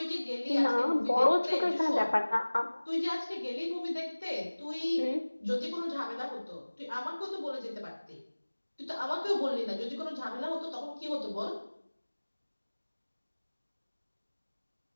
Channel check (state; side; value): inverted; both; correlation -1.00